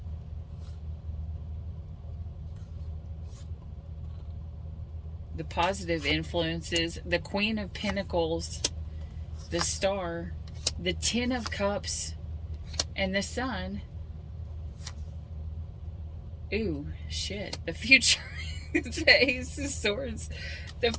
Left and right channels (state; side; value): identical; both; correlation 1.00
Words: The positive influences, the Queen of Pentacles, the Star, the Ten of Cups, and the Sun. Ooh, shit. The future. The Ace of Swords, the